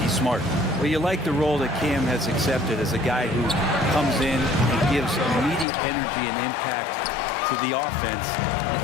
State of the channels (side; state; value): right; drops out; at 5.7 s